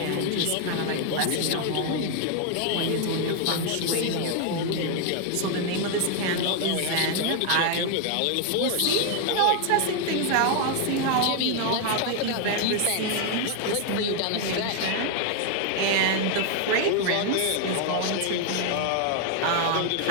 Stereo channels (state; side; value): different; both; correlation 0.00